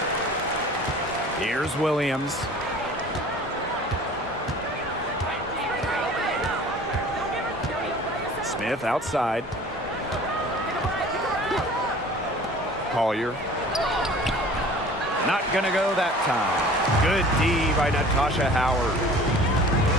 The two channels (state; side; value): normal; both; correlation 0.46